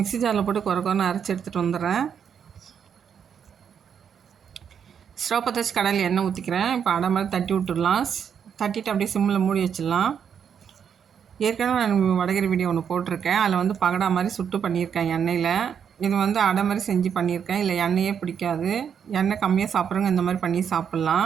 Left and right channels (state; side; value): quieter; left; 7.7 dB